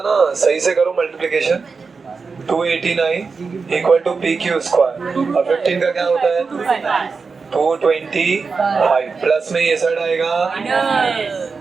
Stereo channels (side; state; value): left; quieter; 4.8 dB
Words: ना सही से करो multiplication. 289 equal to P Q square और 15 का क्या होता है? 225 प्लस में ये साइड आएगा